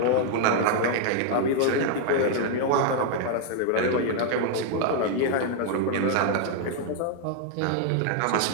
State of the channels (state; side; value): different; both; correlation 0.00